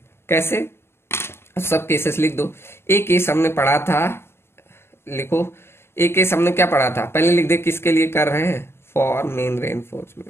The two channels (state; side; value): late; right; 0.12 ms